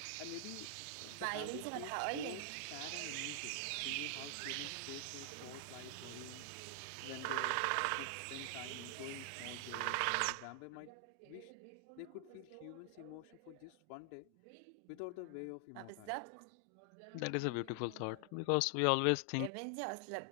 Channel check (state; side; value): different; both; correlation 0.00